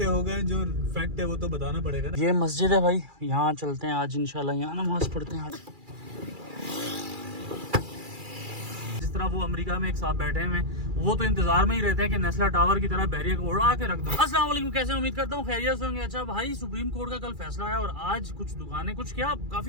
हो गए, जो फैक्ट है वो तो बताना पड़ेगा ना। ये मस्जिद है भाई, यहाँ चलते हैं आज इंशाल्लाह, यहाँ नमाज पढ़ते हैं आज। जिस तरह वो अमेरिका में एक साथ बैठे हैं, वो तो इंतजार में ही रहते हैं कि नेस्ला टावर की तरह बैरियर को उड़ा के रख दो। अस्सलाम वालेकुम, कैसे उम्मीद करता हूँ खैरियत से होंगे। अच्छा भाई, सुप्रीम कोर्ट का कल फैसला है और आज कुछ दुकानें, कुछ क्या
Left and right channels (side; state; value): left; late; 2.4 ms